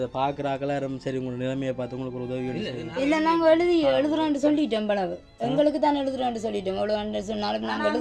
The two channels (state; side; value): identical; both; correlation 1.00